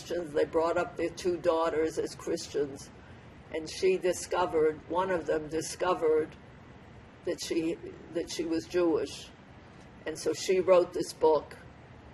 They brought up their 2 daughters as Christians. And one of them discovered that she was Jewish. And so she wrote this book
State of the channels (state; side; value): identical; both; correlation 1.00